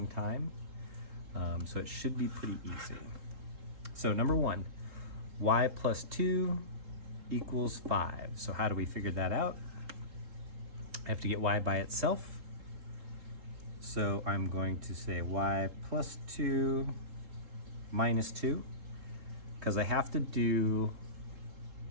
time, so it should be pretty easy. So number one, y plus 2 equals 5. So how do we figure that out? I have to get y by itself. So I'm going to say y plus 2 minus 2, because I have to do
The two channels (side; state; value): left; late; 3.7 ms